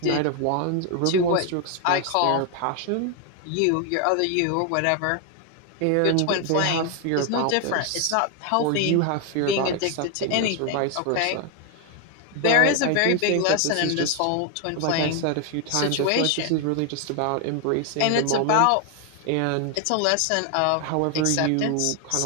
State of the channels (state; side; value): different; both; correlation 0.01